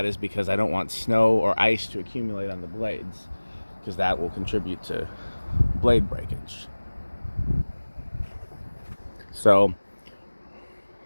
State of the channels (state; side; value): inverted; both; correlation -1.00